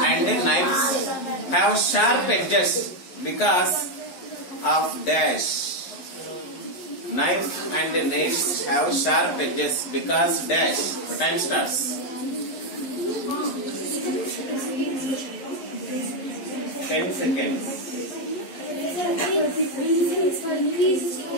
and knives have sharp edges because of dash. Knife and nails have sharp edges because dash. The time starts. 10 seconds.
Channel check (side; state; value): right; late; 11 ms